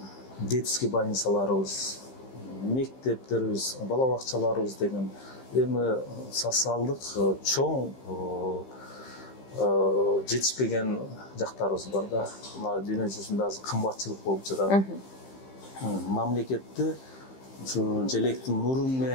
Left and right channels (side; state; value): right; late; 15 ms